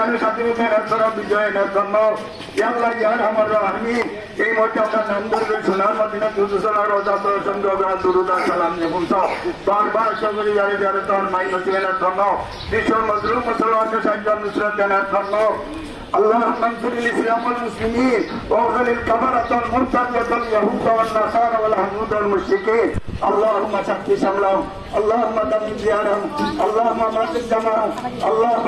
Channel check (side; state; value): both; identical; correlation 1.00